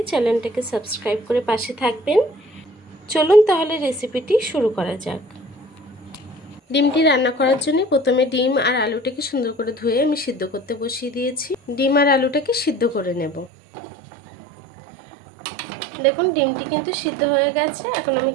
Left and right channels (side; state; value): left; drops out; at 13.5 s